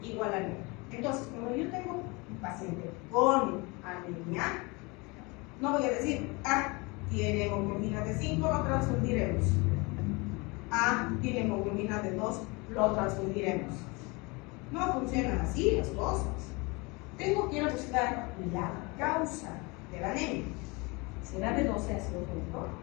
igual anemia. Entonces, cuando yo tengo un paciente con anemia, no voy a decir, tiene hemoglobina de 5, lo transfundiremos. Tiene hemoglobina de 2, lo transfundiremos. No funcionan así las cosas. Tengo que ir a buscar la causa de la anemia. ¿Será B12 ácido fólico?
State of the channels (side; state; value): right; quieter; 26.9 dB